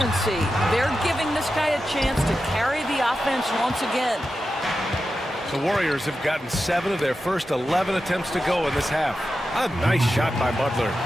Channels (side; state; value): both; normal; correlation 0.91